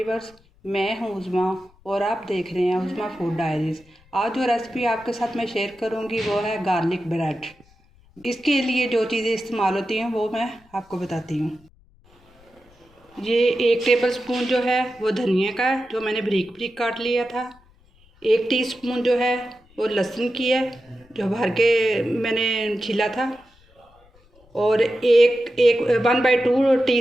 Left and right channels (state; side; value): noise; left; rumble, 30 dB below the sound